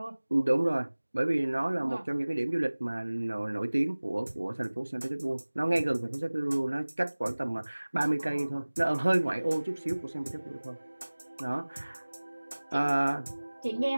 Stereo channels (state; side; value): inverted; both; correlation -1.00